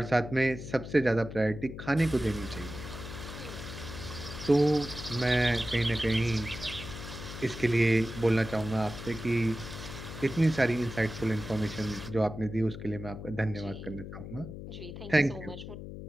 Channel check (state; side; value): noise; left; hum, 10 dB below the sound